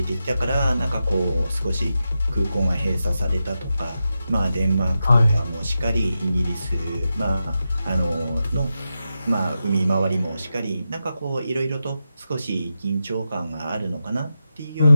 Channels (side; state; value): both; inverted; correlation -0.89